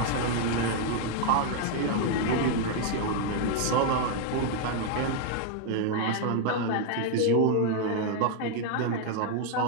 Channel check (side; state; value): both; different; correlation 0.00